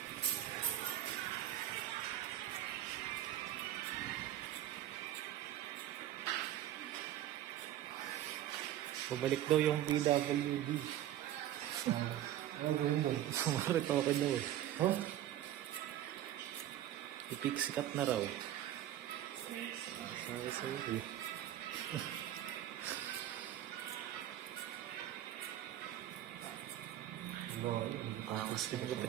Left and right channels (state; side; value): quieter; left; 12.5 dB